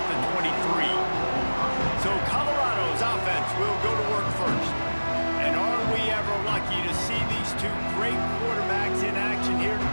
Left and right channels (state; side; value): inverted; both; correlation -1.00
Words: the 23. So Colorado's offense will go to work first. And are we ever lucky to see these two great quarterbacks in action here